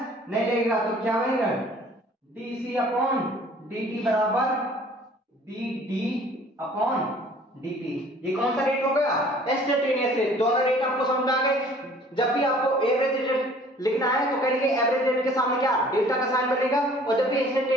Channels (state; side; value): normal; both; correlation 0.53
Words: नहीं लगेगा तो क्या बनेगा, D C upon D T बराबर D D upon D T. ये कौन सा रेट हो गया? Instantaneous rate. दोनों रेट आपको समझ आ गए। जब भी आपको एवरेज रेट लिखना है तो कहेंगे एवरेज रेट के सामने क्या, डेल्टा का साइन बनेगा, और जब भी